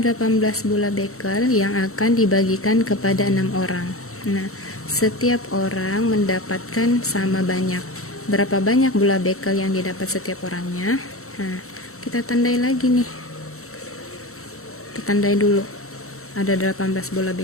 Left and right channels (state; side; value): late; right; 0.63 ms